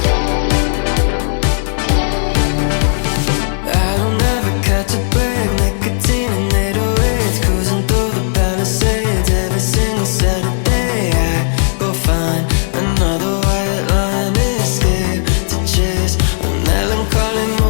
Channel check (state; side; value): silent; right; digital silence